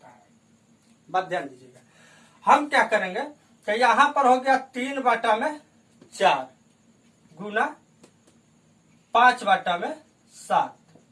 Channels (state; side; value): identical; both; correlation 1.00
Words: है। बात ध्यान दीजिएगा। हम क्या करेंगे कि यहां पर हो गया 3 बटा में 4 गुना 5 बटा में